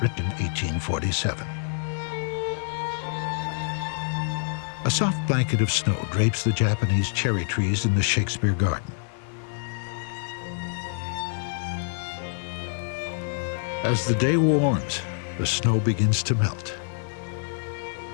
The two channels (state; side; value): silent; right; digital silence